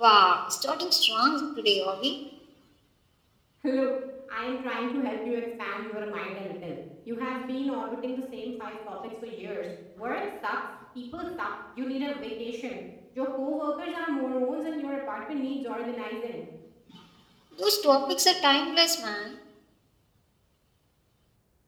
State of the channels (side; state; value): both; identical; correlation 1.00